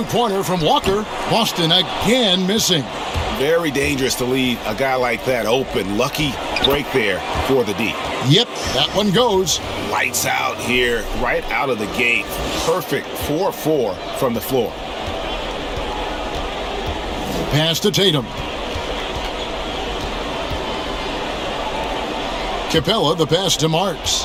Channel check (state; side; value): identical; both; correlation 1.00